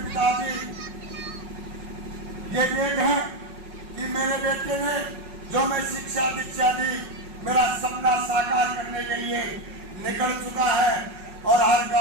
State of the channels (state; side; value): late; left; 5.4 ms